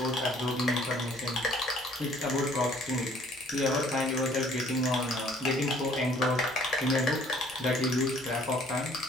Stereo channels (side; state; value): both; normal; correlation 0.57